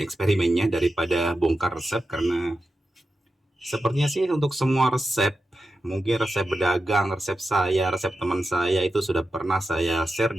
eksperimennya daripada bongkar resep, karena sepertinya sih untuk semua resep, mungkin resep berdagang, resep saya, resep teman saya itu sudah pernah saya share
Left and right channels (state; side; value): normal; both; correlation 0.91